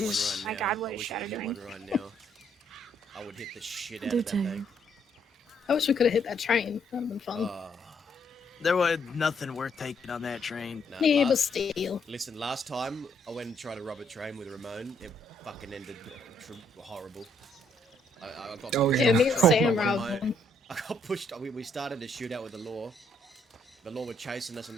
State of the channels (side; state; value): both; normal; correlation 0.70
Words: right My now. God, what I is wish I Shadow could get doing? one right now. I would hit the shit out Do of that too. thing. I wish we could have hit that train. That would have been fun. There was nothing worth taking on that train. No, Yeah, but last, still. listen, last time I went and tried to rob a train with Ramon, it fucking ended horrible. I got Oh, pushed Yeah, yeah. me and off Sam by robbed my- one. I got pushed. We started a shootout with the law. The law were chasing us on